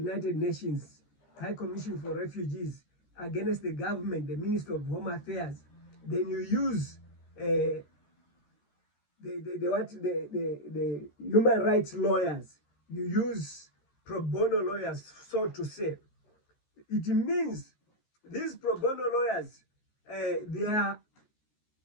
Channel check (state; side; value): late; right; 13 ms